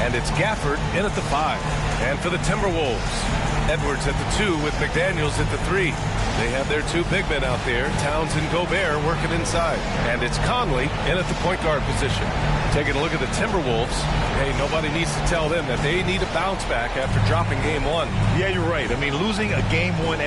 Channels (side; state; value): both; identical; correlation 1.00